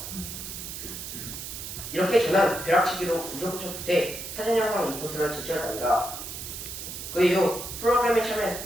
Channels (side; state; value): right; noise; hiss, 8 dB below the sound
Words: 이렇게 저는 벼락치기로 우여곡절 끝에 사진 영상 리포트를 제출했답니다. 그 이후 프로그램에 참여했을